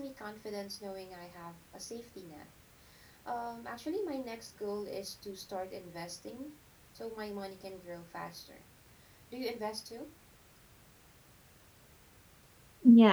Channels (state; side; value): identical; both; correlation 1.00